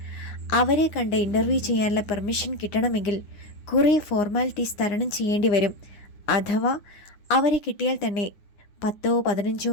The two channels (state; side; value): late; right; 9.8 ms